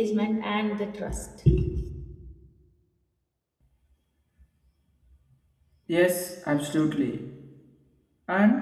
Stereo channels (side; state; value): both; identical; correlation 1.00